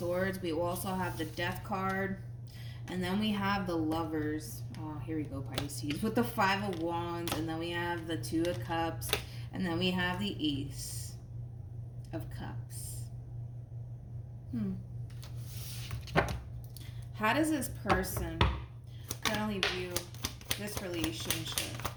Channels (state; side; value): identical; both; correlation 1.00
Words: We also have the Death card. And then we have the Lovers. Oh, here we go, Pisces. With the Five of Wands. And then we have the Two of Cups. And then we have the Ace of Cups. How does this person currently view this relationship